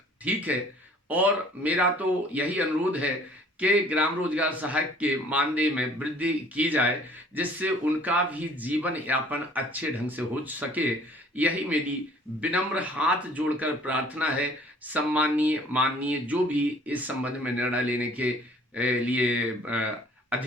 ठीक है, और मेरा तो यही अनुरोध है कि ग्राम रोजगार सहायक के मानदेय में वृद्धि की जाए जिससे उनका भी जीवन यापन अच्छे ढंग से हो सके। यही मेरी विनम्र हाथ जोड़कर प्रार्थना है। सम्माननीय, माननीय जो भी इस संबंध में निर्णय लेने के लिए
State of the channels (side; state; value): both; normal; correlation 0.54